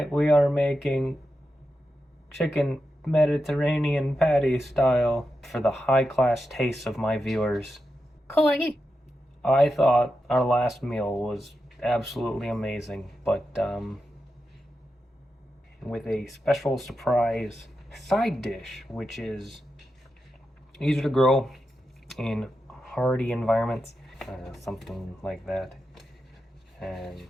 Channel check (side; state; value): both; normal; correlation 0.89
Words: we are making chicken Mediterranean patty style for the high-class tastes of my viewers. Corey. I thought our last meal was absolutely amazing, but with a special surprise side dish, which is easier to grow in hardy environments, something like that. And